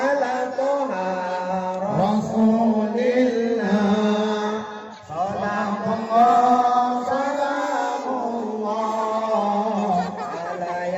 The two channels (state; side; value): identical; both; correlation 1.00